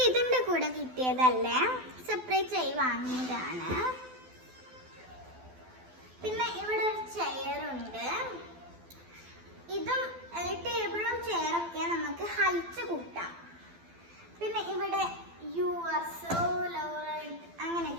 ഇതിൻ്റെ കൂടെ കിട്ടിയതല്ലേ, സെപ്പറേറ്റ് ആയി വാങ്ങിയതാണ്. പിന്നെ ഇവിടെ ഒരു ചെയറുണ്ട്. ഇതും ടേബിളും ചെയറൊക്കെ നമുക്ക് ഹൈറ്റ് കൂട്ടാം. പിന്നെ ഇവിടെ യു ആർ സോ ലവ്ഡ്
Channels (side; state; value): left; late; 12 ms